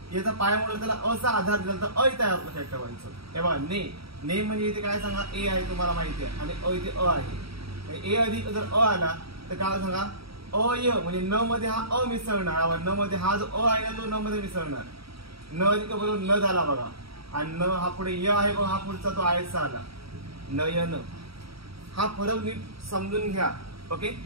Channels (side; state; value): left; late; 0.76 ms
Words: याचा पाय मोडला त्याला अ चा आधार दिला तर ऐ तयार होतो. लक्षात ठेवायचं. हे बघा ने म्हणजे इथे काय सांगा ए आहे तुम्हाला माहिती आहे आणि अ इथे अ आहे. ए अधिक जर अ आला तर काय सांगा अय म्हणजे न मध्ये हा अ मिसळणार, न मध्ये हा जो अ आहे ना तो न मध्ये मिसळणार. न अधिक बरोबर न झाला बघा आणि न हा पुढे य आहे बघा, हा पुढचा तो आयचा आला नयन. हा फरक नीट समजून घ्या. ओके,